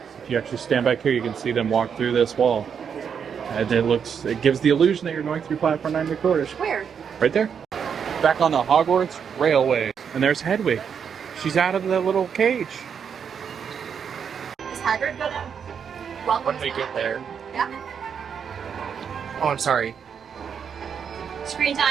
if you actually stand back here, you can see them walk through this wall. And it gives the illusion that you're going through platform 9 3/4. Where? Right there. Back on the Hogwarts Railway. And there's Hedwig. She's out of the little cage. Is Hagrid gonna welcome When we get there. Yeah. Oh, I'm sorry. Screen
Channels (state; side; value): quieter; left; 7.2 dB